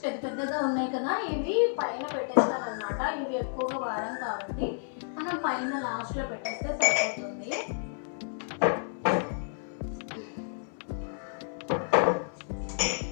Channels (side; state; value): right; silent; 57 dB below the other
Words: పెద్దగా ఉన్నాయి కదా, ఇవి పైన పెట్టేస్తాను అనమాట. ఇవి ఎక్కువగా వాడం కాబట్టి మనం పైన లాస్ట్లో పెట్టేస్తే సరిపోతుంది.